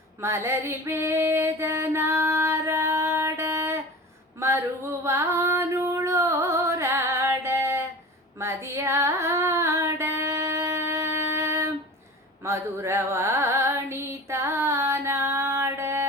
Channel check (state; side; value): normal; both; correlation 0.35